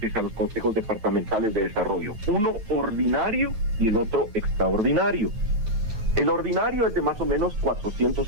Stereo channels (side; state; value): left; late; 9.2 ms